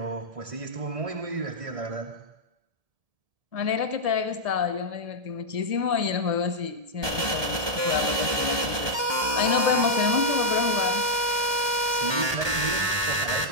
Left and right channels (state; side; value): late; left; 1.2 ms